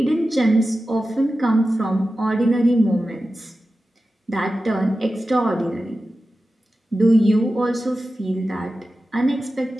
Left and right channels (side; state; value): both; normal; correlation 0.93